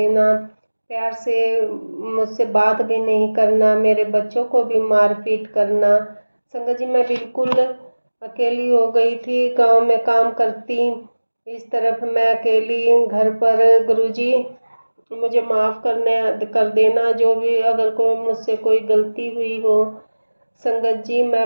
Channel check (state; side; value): inverted; both; correlation -1.00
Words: प्यार से मुझसे बात भी नहीं करना, मेरे बच्चों को भी मारपीट करना। संगत जी, मैं बिल्कुल अकेली हो गई थी, गांव में काम करती, इस तरफ मैं अकेली घर पर। गुरुजी, मुझे माफ़ कर देना, जो भी अगर कोई मुझसे कोई गलती हुई हो। संगत जी, मैं